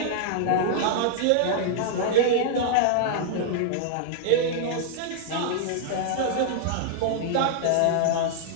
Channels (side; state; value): both; different; correlation -0.01